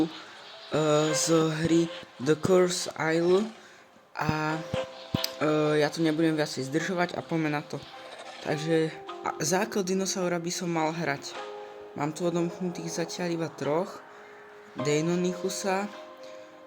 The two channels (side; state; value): both; identical; correlation 1.00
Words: z hry The Curse Isle a ja tu nebudem viacej zdržovať a poďme na to. Takže základ dinosaura by som mal hrať. Mám tu odomknutých zatiaľ iba troch. Deinonychusa,